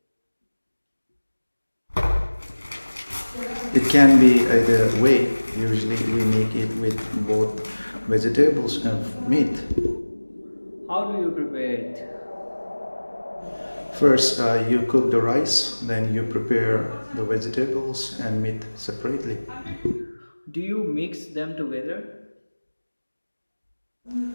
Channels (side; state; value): both; inverted; correlation -1.00